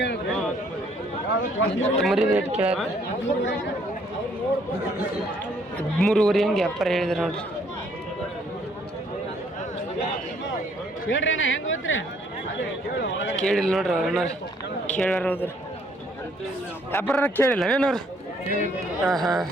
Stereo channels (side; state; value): both; normal; correlation 0.65